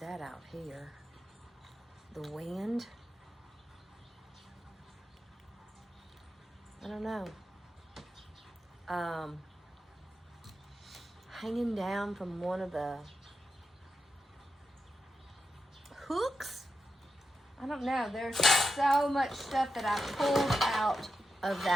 out here. The wind. I don't know. Hanging down from one of the hooks. I don't know. There's so much stuff that I pulled out of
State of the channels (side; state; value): both; normal; correlation 0.88